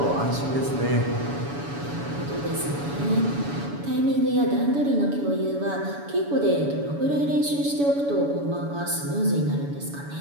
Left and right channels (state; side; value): late; left; 7.0 ms